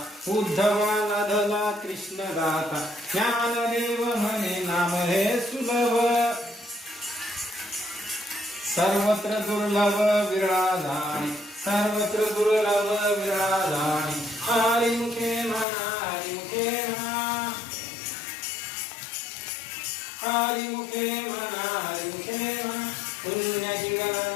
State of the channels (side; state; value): right; drops out; at 15.7 s